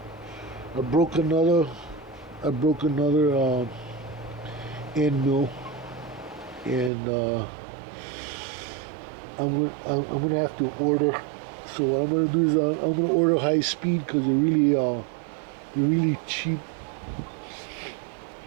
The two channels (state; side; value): drops out; left; at 6.9 s